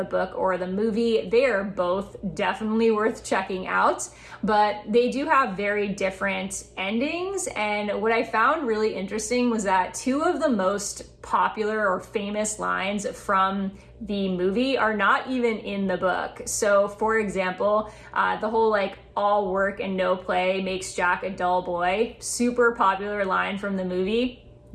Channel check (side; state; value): both; identical; correlation 1.00